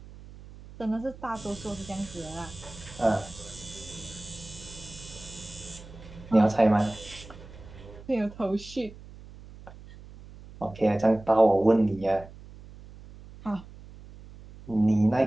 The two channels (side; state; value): right; noise; hum, 18 dB below the sound